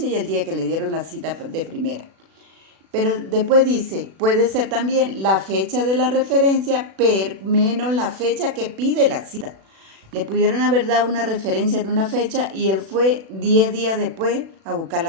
y el día que le dieron la cita de primera. Pero después dice, puede ser también la fecha de la referencia menos la fecha que pide la cita. Le pudieron haber dado una referencia en una fecha y él fue 10 días después a buscar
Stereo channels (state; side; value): late; left; 36 ms